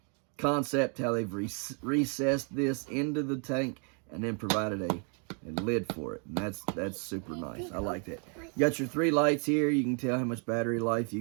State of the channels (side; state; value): left; quieter; 39.4 dB